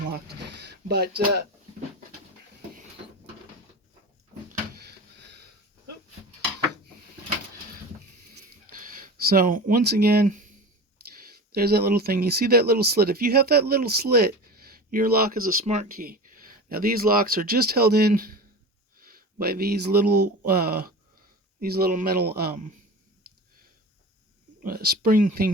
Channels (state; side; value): normal; both; correlation 0.32